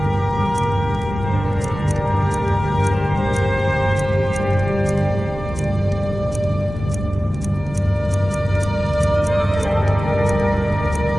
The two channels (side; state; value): both; normal; correlation 0.96